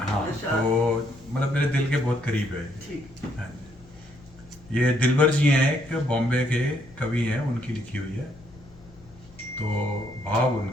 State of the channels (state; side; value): noise; left; hum, 24 dB below the sound